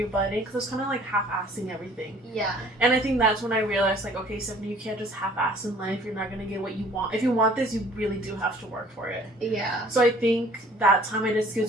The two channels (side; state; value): both; normal; correlation 0.54